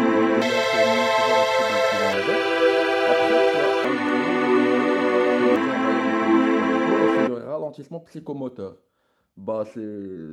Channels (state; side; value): identical; both; correlation 1.00